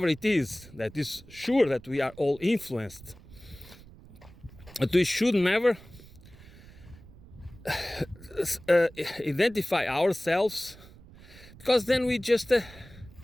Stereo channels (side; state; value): right; noise; rumble, 20 dB below the sound